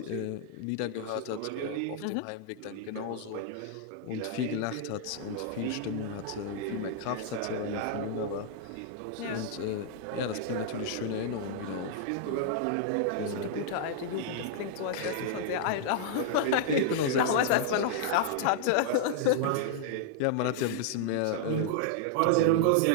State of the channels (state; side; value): different; both; correlation -0.01